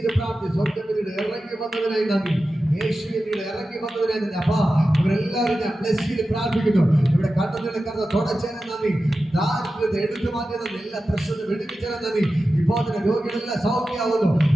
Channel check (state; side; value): normal; both; correlation 0.93